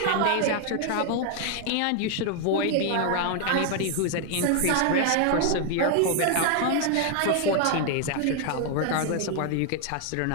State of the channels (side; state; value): both; different; correlation 0.00